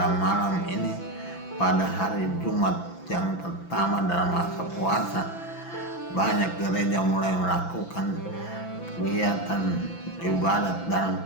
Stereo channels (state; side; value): late; right; 6.0 ms